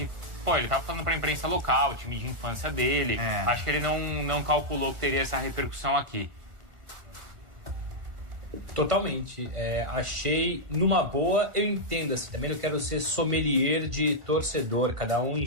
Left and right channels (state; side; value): late; left; 1.4 ms